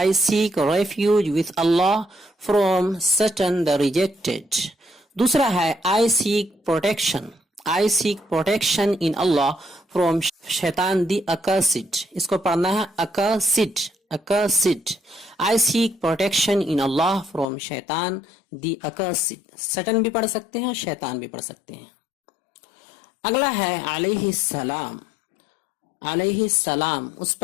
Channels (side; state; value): right; drops out; at 17.4 s